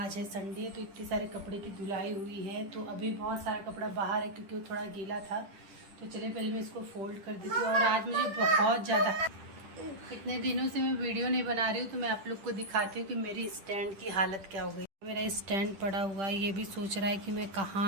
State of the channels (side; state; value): left; late; 10 ms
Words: है संडे, तो इतने सारे कपड़े की धुलाई हुई है। तो अभी बहुत सारा कपड़ा बाहर है क्योंकि वो थोड़ा गीला था। तो चलिए पहले मैं इसको फोल्ड कर देती हूँ। और आज मुझे बहुत ज़्यादा, इतने दिनों से मैं वीडियो नहीं बना रही हूँ तो मैं आप लोग को दिखाती हूँ कि मेरी स्टैंड की हालत क्या हो गई। मेरा स्टैंड पड़ा हुआ है, ये भी सोच रहा है कि मैं